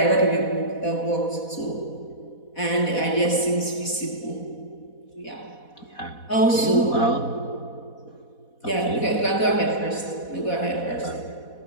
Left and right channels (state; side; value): late; right; 4.1 ms